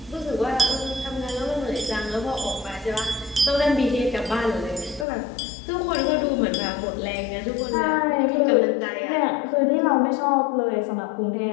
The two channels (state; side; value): drops out; right; at 5.1 s